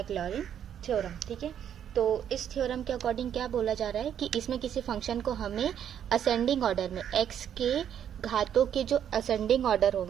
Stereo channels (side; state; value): left; quieter; 9.4 dB